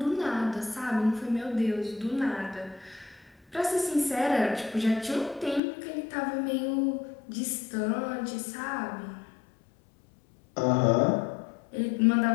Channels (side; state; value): right; drops out; at 5.6 s